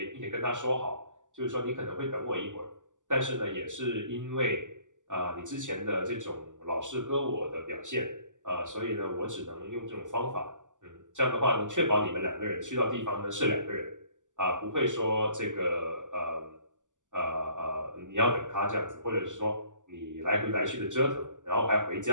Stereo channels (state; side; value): late; left; 0.87 ms